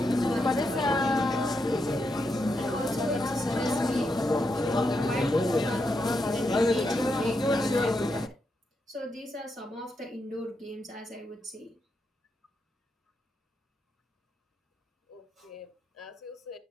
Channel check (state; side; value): normal; both; correlation 0.83